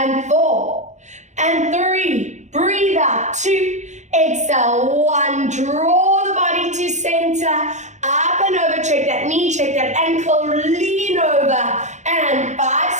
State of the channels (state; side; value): late; left; 0.34 ms